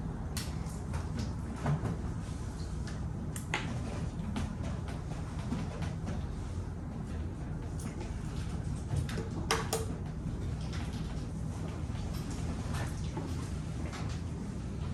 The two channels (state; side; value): identical; both; correlation 1.00